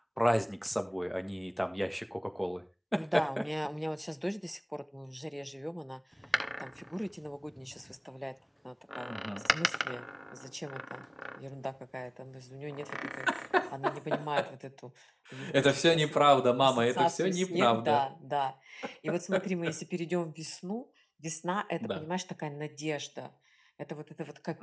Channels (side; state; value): both; identical; correlation 1.00